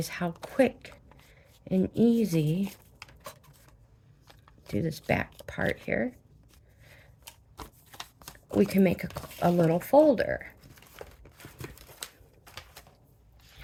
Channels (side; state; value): both; identical; correlation 1.00